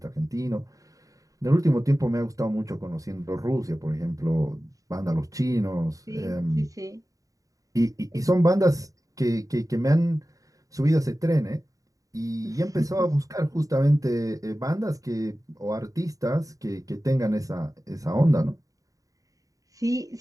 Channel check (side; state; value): left; late; 0.16 ms